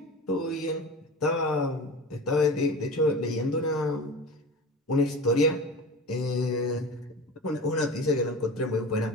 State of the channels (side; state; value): both; normal; correlation 0.33